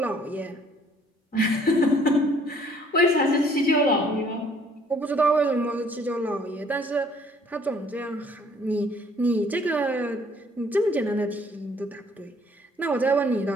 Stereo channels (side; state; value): both; normal; correlation 0.60